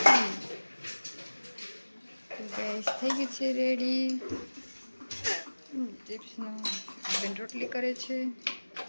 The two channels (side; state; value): both; inverted; correlation -1.00